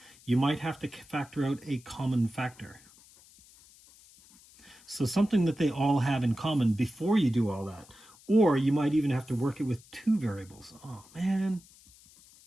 you might have to factor out a common factor. So something that they all have in common before you do all that. Or you might even have to work it with two variables. Oh, man.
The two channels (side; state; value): left; noise; hiss, 25 dB below the sound